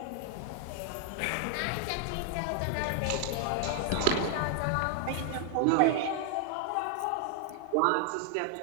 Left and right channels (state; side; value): different; both; correlation 0.00